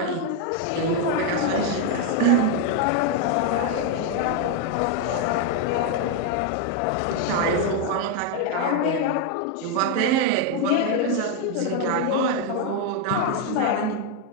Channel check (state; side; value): different; both; correlation 0.01